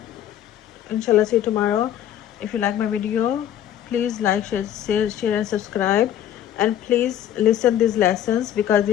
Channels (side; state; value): right; quieter; 10.9 dB